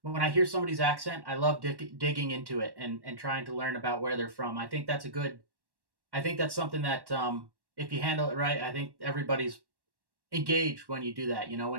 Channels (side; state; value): left; late; 1.1 ms